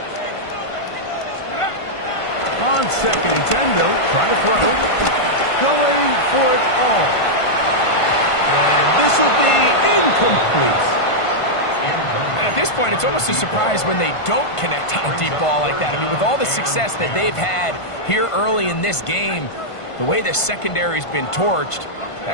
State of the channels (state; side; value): late; right; 1.5 ms